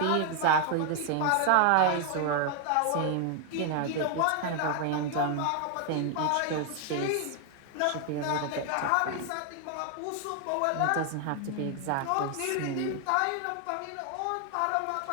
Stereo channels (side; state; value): both; different; correlation 0.00